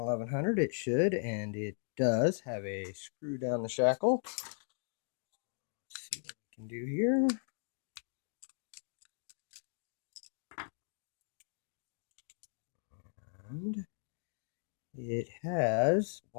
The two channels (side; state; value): right; silent; digital silence